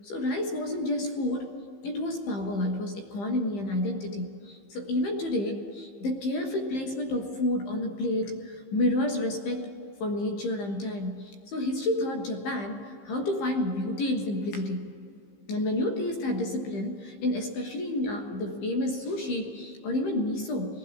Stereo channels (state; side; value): late; right; 15 ms